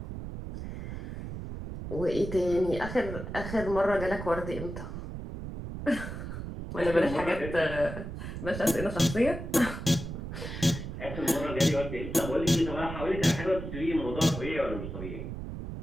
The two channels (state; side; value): noise; right; rumble, 7 dB below the sound